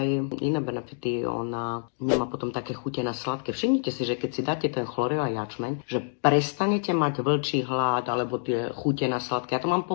iné benefity, ona nemá potom také chute na sladké. Všimnite si, že keď si dáte ten chlorel a jačmeň, že prestanete mať vlčí hlad alebo tie chute na sladké. Ja to mám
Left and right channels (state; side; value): silent; right; digital silence